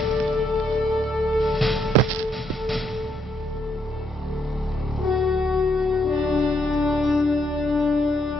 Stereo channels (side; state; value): both; normal; correlation 0.75